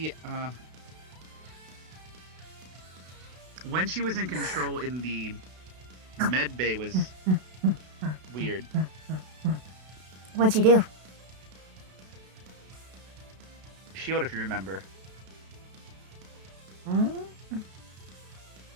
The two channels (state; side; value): late; left; 32 ms